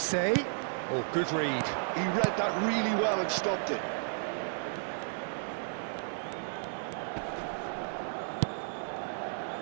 Oh, good read. He read that really well and stopped it.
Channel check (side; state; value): left; silent; digital silence